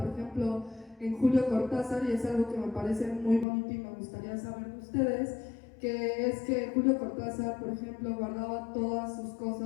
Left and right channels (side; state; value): right; drops out; at 3.5 s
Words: ejemplo, en Julio Cortázar, y es algo que me parece muy bonito y me gustaría saber de ustedes, que es que Julio Cortázar, por ejemplo, guardaba todas sus